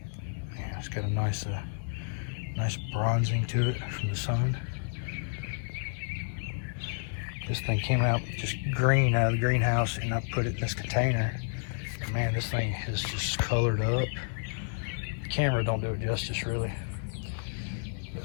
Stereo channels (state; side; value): silent; right; digital silence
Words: Yeah, it's got a nice bronzing to it from the sun. This thing came out just green out of the greenhouse, and I put it in this container. And man, this thing is just colored up. The camera don't do it justice, really. But